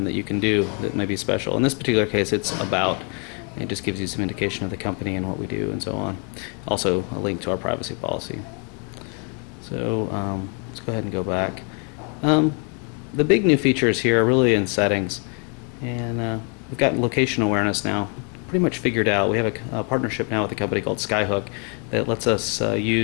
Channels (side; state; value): right; quieter; 37.9 dB